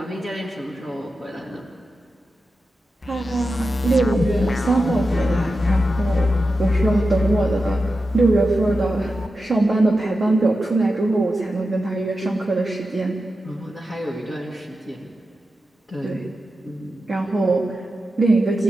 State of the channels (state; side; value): normal; both; correlation 0.91